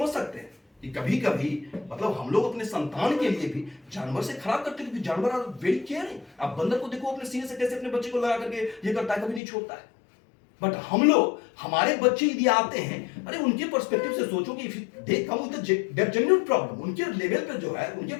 सकते हैं कि कभी कभी मतलब हम लोग अपने संतान के लिए भी जानवर से खराब करते हैं, क्योंकि जानवर आर वेरी केयरिंग। आप बंदर को देखो अपने सीने से कैसे अपने बच्चे को लगा करके ये करता है, कभी नहीं छोड़ता है। बट हम लोग, हमारे बच्चे यदि आते हैं, अरे उनके पर्सपेक्टिव से सोचो कि they come with the genuine problem, उनके लेवल पे जो है उनके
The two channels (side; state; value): right; drops out; at 9.4 s